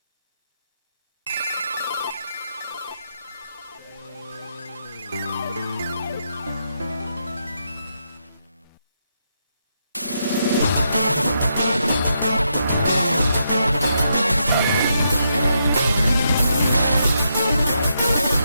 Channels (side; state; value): both; inverted; correlation -0.80